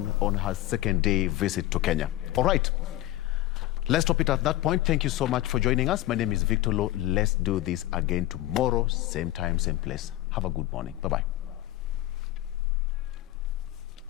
her second day visit to Kenya. All right. Let's stop it at that point. Thank you so much for joining us. My name is Victor Lo. Let's do this again tomorrow, same time, same place. Have a good morning. Bye-bye.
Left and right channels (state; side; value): quieter; right; 15.7 dB